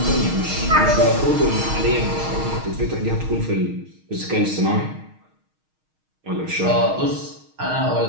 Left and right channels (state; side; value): late; left; 6.4 ms